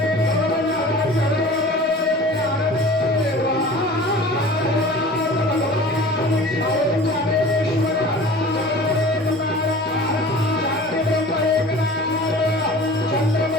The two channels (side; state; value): both; normal; correlation 0.42